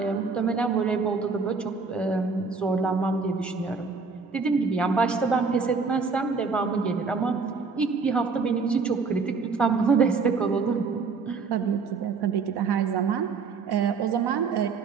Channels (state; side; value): quieter; left; 4.8 dB